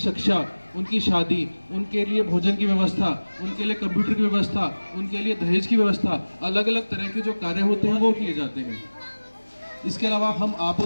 उनकी शादी, उनके लिए भोजन की व्यवस्था, उनके लिए कंप्यूटर की व्यवस्था, उनके लिए दहेज की व्यवस्था, अलग अलग तरह के जो कार्य होते हैं वो किए जाते हैं। इसके अलावा आप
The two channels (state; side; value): inverted; both; correlation -1.00